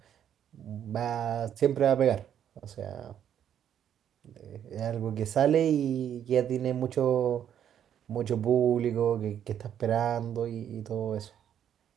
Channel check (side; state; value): left; quieter; 9.6 dB